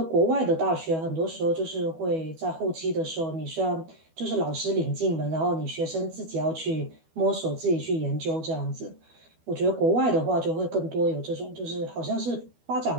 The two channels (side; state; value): left; late; 12 ms